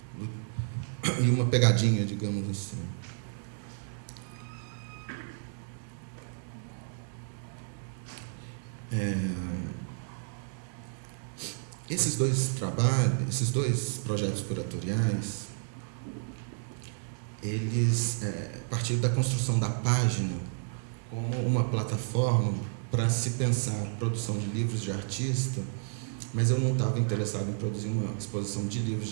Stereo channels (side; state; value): left; silent; 55 dB below the other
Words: uma pegadinha, digamos assim. Esses dois trabalhos, esses dois projetos curatoriais, eles partiram da construção da página como uma plataforma para se pensar a produção de livros de artista, mas eu não estava interessado em produzir uma exposição de livros